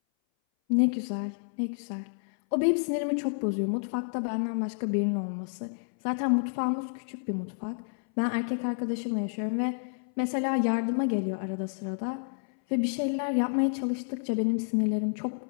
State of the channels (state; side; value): silent; right; 58 dB below the other